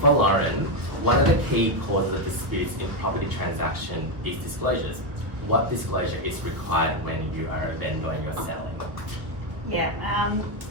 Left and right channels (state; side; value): late; left; 1.2 ms